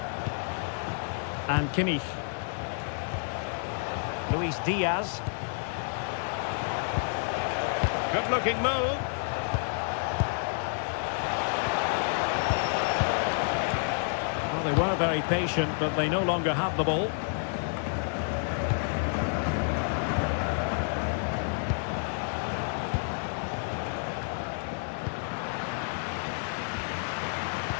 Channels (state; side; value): silent; right; 58 dB below the other